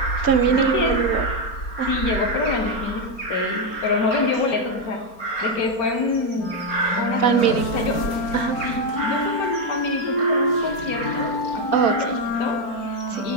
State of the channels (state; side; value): late; right; 4.3 ms